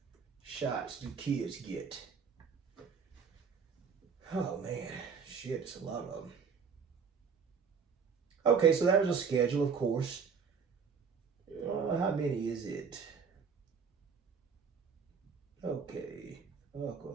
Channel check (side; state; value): left; quieter; 5.9 dB